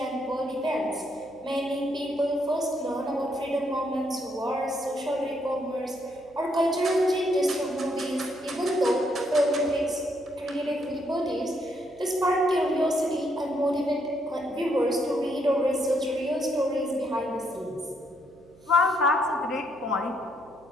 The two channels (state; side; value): noise; right; hum, 28 dB below the sound